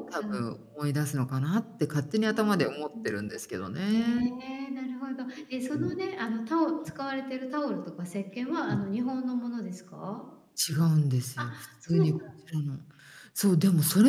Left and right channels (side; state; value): both; identical; correlation 1.00